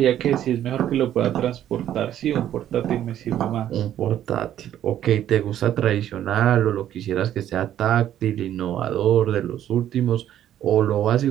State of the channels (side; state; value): left; quieter; 11.3 dB